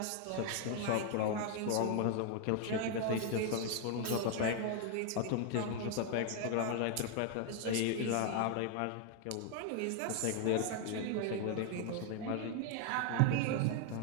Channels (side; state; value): both; different; correlation 0.00